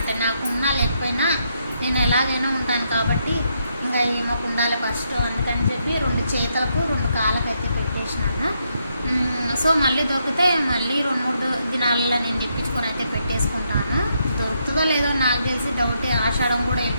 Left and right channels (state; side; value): inverted; both; correlation -0.78